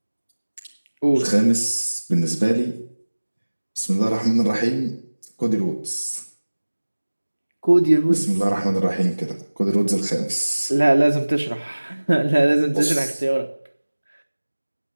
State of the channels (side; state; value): both; inverted; correlation -1.00